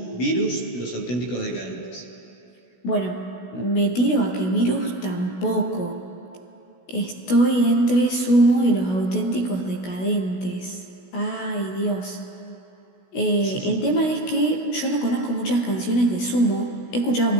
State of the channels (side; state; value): right; late; 16 ms